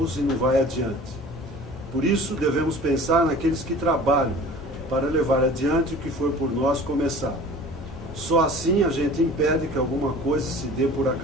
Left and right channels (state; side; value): normal; both; correlation 0.43